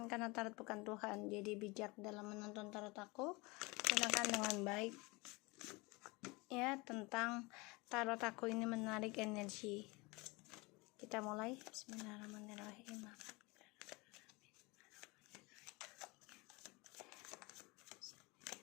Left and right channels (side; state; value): right; quieter; 25.4 dB